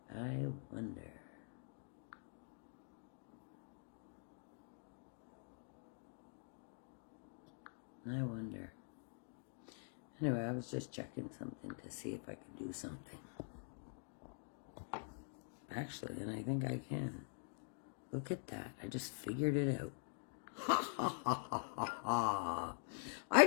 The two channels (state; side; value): silent; right; digital silence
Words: Anyway, I was just checking something to see if I could do something. Actually, and I think I can. Look at that. I just figured it out. Ha ha ha ha ha ha. I